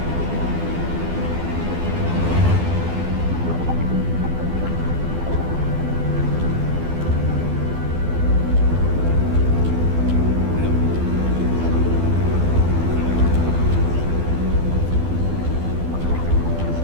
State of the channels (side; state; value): left; late; 12 ms